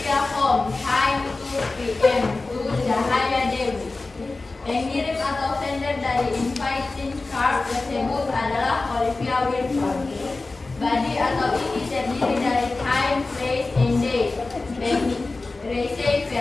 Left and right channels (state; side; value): quieter; right; 3.5 dB